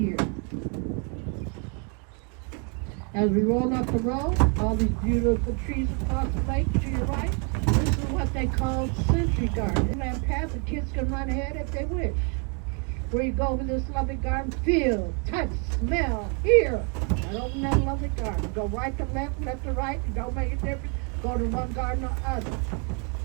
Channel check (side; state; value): left; quieter; 37.3 dB